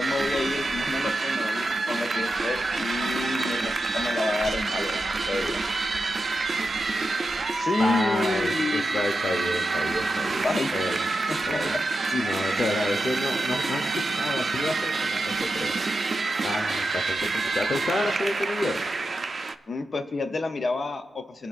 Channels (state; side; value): normal; both; correlation 0.89